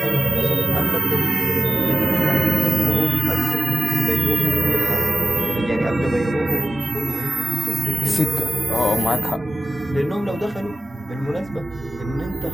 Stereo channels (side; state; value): both; normal; correlation 0.96